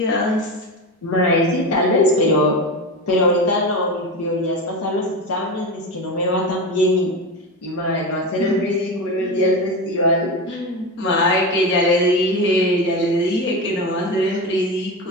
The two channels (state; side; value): normal; both; correlation 0.21